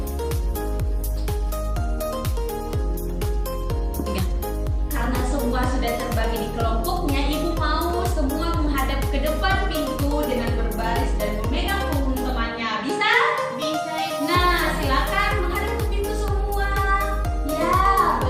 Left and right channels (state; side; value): identical; both; correlation 1.00